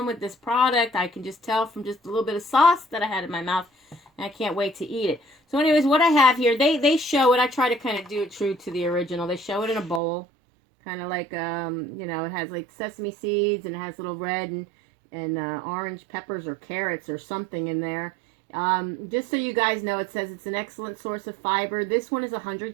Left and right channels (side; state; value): left; drops out; at 10.0 s